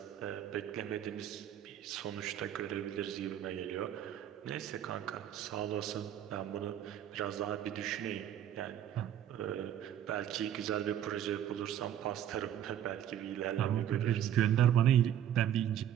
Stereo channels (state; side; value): quieter; left; 10.5 dB